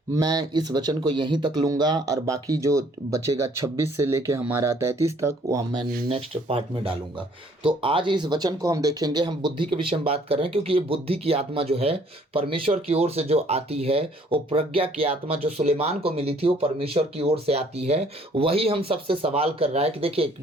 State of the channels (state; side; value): normal; both; correlation 0.61